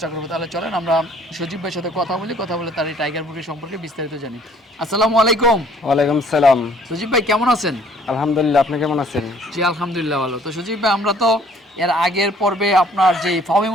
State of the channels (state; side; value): normal; both; correlation 0.58